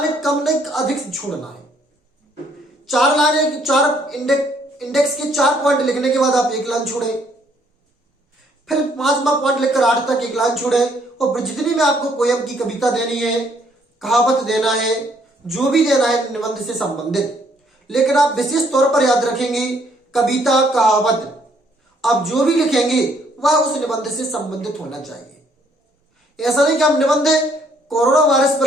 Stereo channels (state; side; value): normal; both; correlation 0.66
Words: कम नहीं अधिक छोड़ना है। 4 लाइनें, 4 इंडेक्स के 4 पॉइंट लिखने के बाद आप 1 लाइन छोड़े, फिर 5वां पॉइंट लिखकर 8 तक 1 लाइन छोड़े। और जितनी भी आपको पोयम की कविता देनी है, कहावत देना है, जो भी देना है निबंध से संबंधित, लेकिन आप विशेष तौर पर याद रखेंगे कविता, कहावत, आप जो भी लिखेंगे वह उस निबंध से संबंधित होना चाहिए। ऐसा नहीं कि हम निबंध कोरोना वायरस